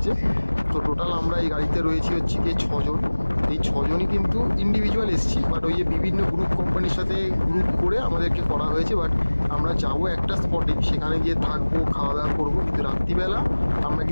তো টোটাল আমরা এই গাড়িতে রয়েছি হচ্ছে গিয়ে 6 জন। এই 6 জনই কিন্তু ইন্ডিভিজুয়াল এসেছি, বাট ওই যে বিভিন্ন গ্রুপ কোম্পানির সাথে গ্রুপ করে আমাদেরকে করা হয়েছে। বাট আমরা যাবো একটা স্পটে, সেখানে গিয়ে থাকবো, খাওয়া দাওয়া করবো, কিন্তু রাত্রিবেলা আমরা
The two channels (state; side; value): inverted; both; correlation -1.00